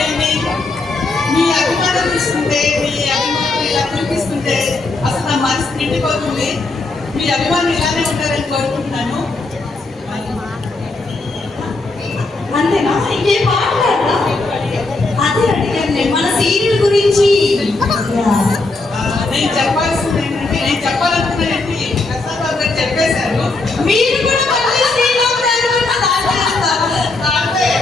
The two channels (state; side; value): quieter; right; 3.4 dB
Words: మీ అభిమానం తీసుకుంటే, మీ అభిమానం ఇలా చూపిస్తుంటే అసలు నా మనసు నిండిపోతుంది. మీ అభిమానం ఇలానే ఉంటారని కోరుకుంటున్నాను. అంతేనా? ఇంకేం మాట్లాడరా? అదే అడిగాను నేను మన సీరియల్ గురించి. నేను చెప్పాల్సింది ఏంటంటే, నేను చెప్పాలనుకున్నానంటే ప్రసాద్ బాబు గారు చెప్పేశారు. మీరు కూడా మళ్ళీ శ్రీరామ్ గారి గురించి మాట్లాడతారు.